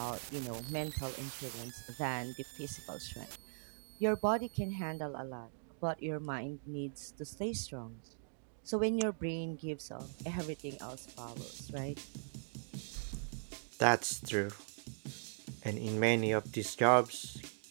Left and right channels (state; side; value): silent; left; digital silence